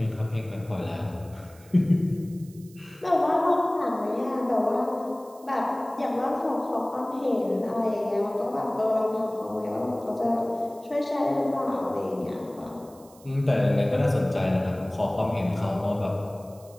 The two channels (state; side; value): noise; right; hiss, 25 dB below the sound